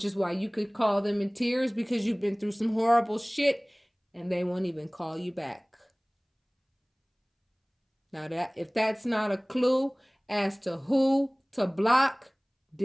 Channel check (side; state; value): both; identical; correlation 1.00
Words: is why you could call them in tears because you've been through some horrible shit and they won't even call you back. Now, if that's not a clue as to who to block,